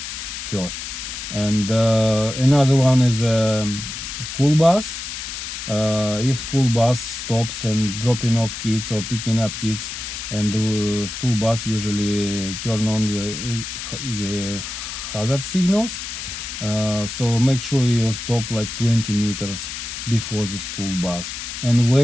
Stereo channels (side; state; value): left; noise; hiss, 7 dB below the sound